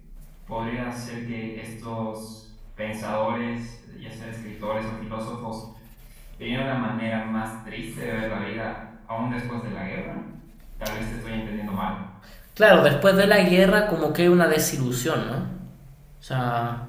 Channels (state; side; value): identical; both; correlation 1.00